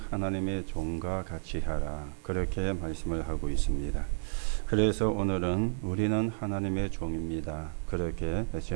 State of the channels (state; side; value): silent; left; digital silence